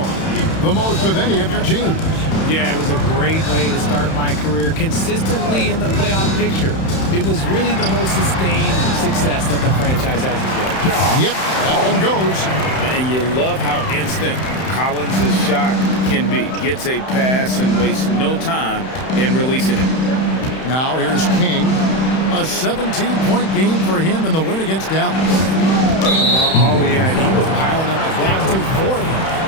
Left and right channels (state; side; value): late; right; 31 ms